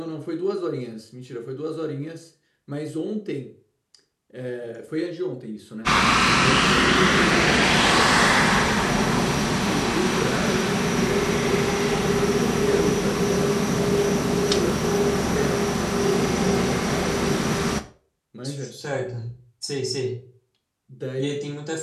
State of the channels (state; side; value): identical; both; correlation 1.00